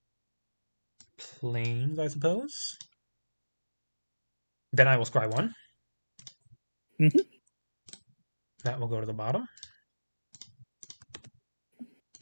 Plains, I suppose. Then I will Scry 1. Mm-hmm. That will go to the bottom.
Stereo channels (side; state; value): both; inverted; correlation -1.00